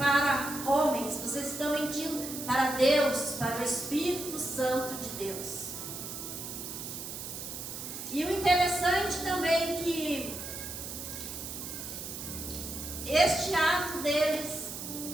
homens, vocês estão mentindo para Deus, para o Espírito Santo de Deus. E o interessante também é que este ato deles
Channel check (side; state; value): right; noise; hiss, 8 dB below the sound